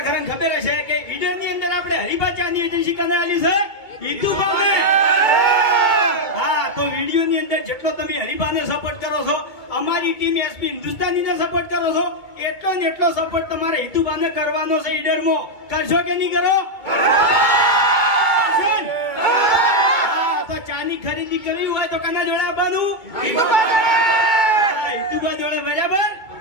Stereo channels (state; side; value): late; right; 2.2 ms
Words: ખરા ખબર હશે કે ઈડર ની અંદર આપણે હરિભાચાની એજન્સી કને આલી છે ઈતુભાને. હા, તો વિડીયો ની અંદર જેટલો તમે હરિભાને સપોર્ટ કરો છો, અમારી ટીમ એસપી હિન્દુસ્તાની ને સપોર્ટ કરો છો, એટલો ને એટલો સપોર્ટ તમારે ઈતુભાને કરવાનો છે. ઈડરમાં કરશો કે નહીં કરો? તો ચાની ખરીદી કરવી હોય તો કના જોડે આવવાનું? ઈતુભા જોડે. બરાબર.